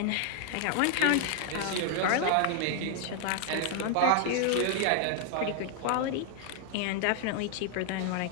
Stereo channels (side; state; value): both; different; correlation 0.00